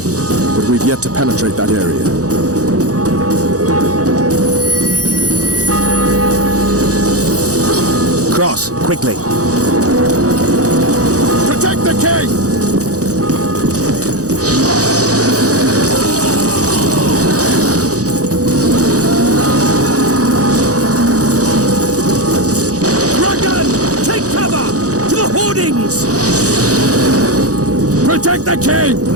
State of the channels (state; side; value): late; left; 0.67 ms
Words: but we've yet to penetrate that area. Cross, quickly. Protect the king! Dragon! Take cover! To the hoardings! Protect the king!